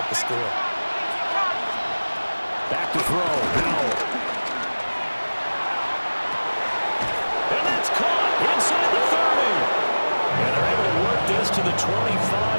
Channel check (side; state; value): both; inverted; correlation -1.00